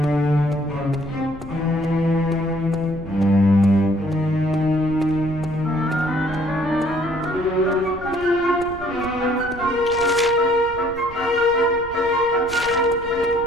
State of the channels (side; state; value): right; noise; rumble, 16 dB below the sound